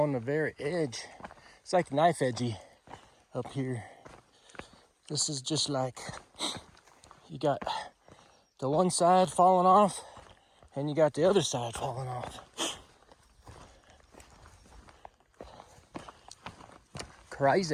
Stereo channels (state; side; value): identical; both; correlation 1.00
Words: the very edge. It's like knife edgy up here. This is just like, you got the one side falling off and you got the other side falling off.